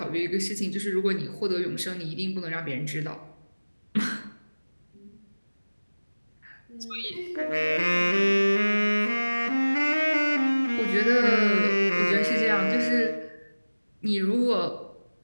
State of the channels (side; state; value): both; inverted; correlation -1.00